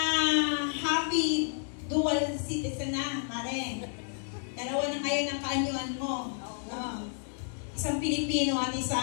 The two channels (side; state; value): right; silent; 57 dB below the other